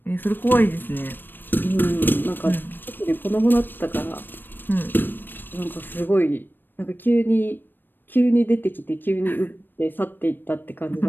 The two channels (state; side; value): late; right; 0.094 ms